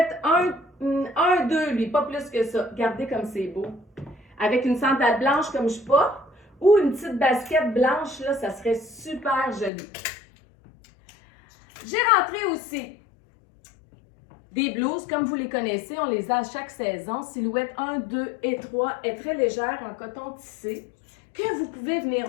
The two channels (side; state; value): right; drops out; at 9.7 s